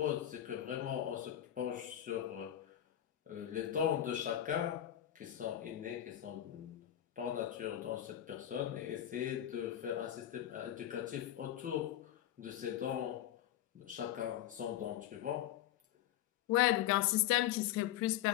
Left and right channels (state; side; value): quieter; right; 12.0 dB